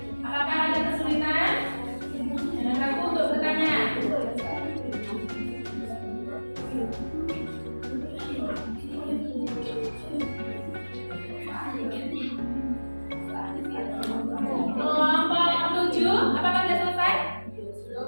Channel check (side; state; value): both; inverted; correlation -1.00